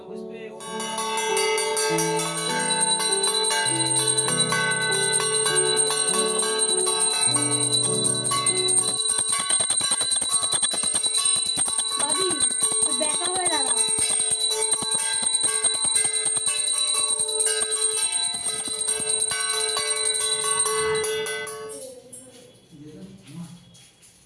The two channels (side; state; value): both; identical; correlation 1.00